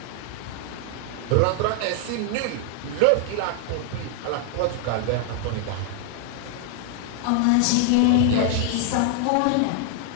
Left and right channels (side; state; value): both; different; correlation 0.00